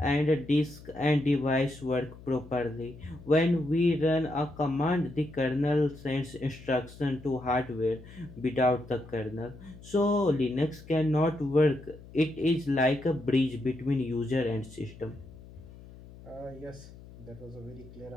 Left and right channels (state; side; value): noise; left; hum, 18 dB below the sound